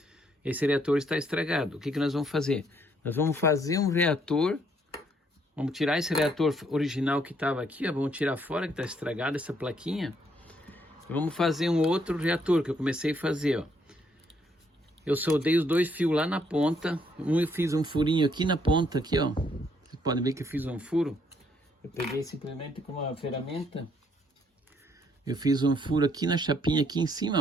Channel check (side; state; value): both; normal; correlation 0.70